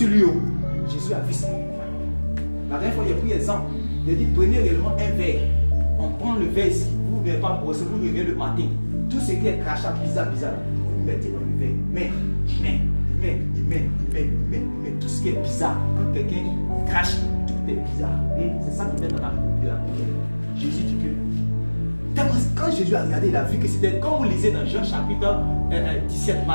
lui. Jésus a vu ça. La dernière fois, il a pris l'exemple. Il a dit, prenez réellement un verre. On prend le verre ici. Vous n'avez pas brossé, vous revenez le matin. Tout ce qui est crachat bizarre, vous le mettez dans le verre. Mais, tout ce qui est bizarre, quand quelqu'un crache, tout est bizarre. Et c'est ça qui met dans la Bible. Jésus dit que, quand Jésus a regardé, il a vu que c'était, quand vous lisez dans Jean chapitre 17,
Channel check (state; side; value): inverted; both; correlation -1.00